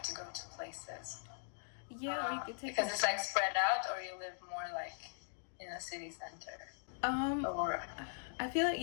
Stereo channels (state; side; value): silent; right; digital silence